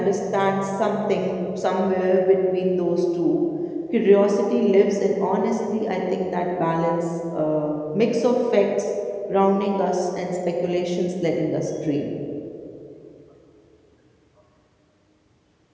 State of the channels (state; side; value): identical; both; correlation 1.00